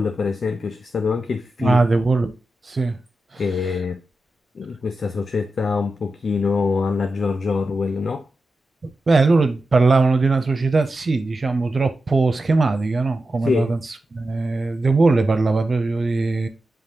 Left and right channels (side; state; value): both; normal; correlation 0.90